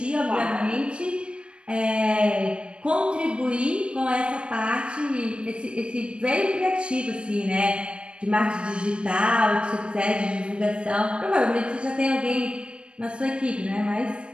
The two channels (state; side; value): late; left; 0.057 ms